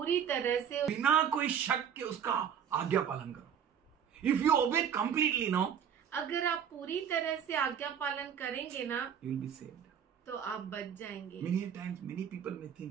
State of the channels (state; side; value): quieter; left; 8.2 dB